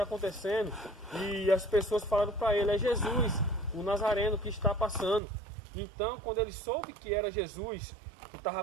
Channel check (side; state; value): left; drops out; at 5.2 s